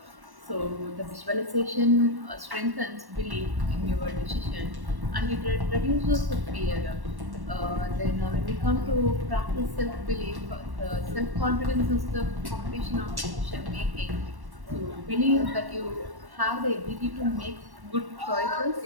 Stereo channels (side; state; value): left; late; 1.1 ms